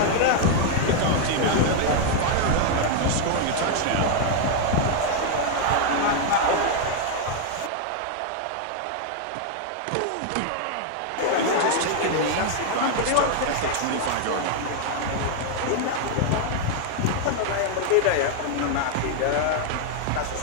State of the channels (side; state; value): both; different; correlation 0.00